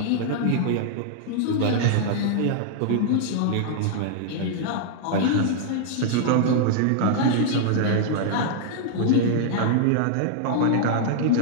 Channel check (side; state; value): both; different; correlation -0.01